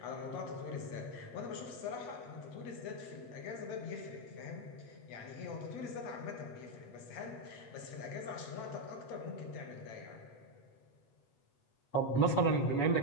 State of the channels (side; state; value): right; late; 8.2 ms